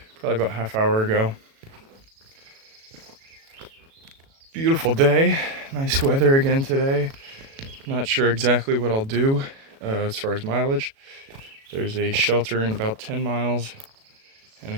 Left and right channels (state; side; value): late; left; 37 ms